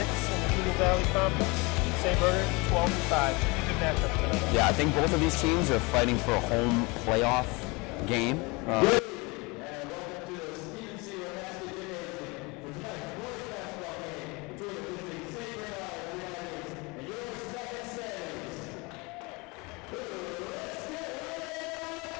in the Junior Valley Conference. St. Bernard 12-5. Should be a good matchup tonight. Yeah, I think both of these teams are fighting for a home playoff game.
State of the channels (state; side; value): quieter; right; 26.5 dB